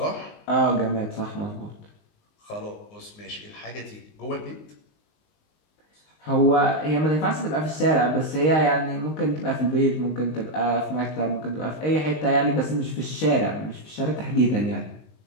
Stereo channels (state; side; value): late; right; 19 ms